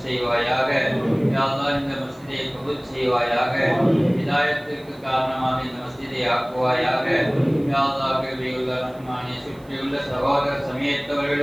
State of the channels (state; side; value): noise; right; hiss, 29 dB below the sound